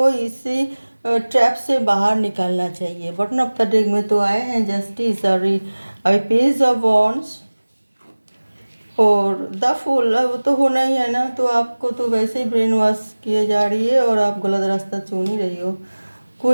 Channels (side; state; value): both; inverted; correlation -1.00